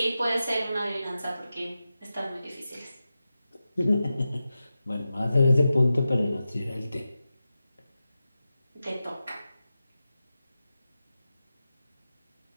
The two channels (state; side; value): inverted; both; correlation -0.92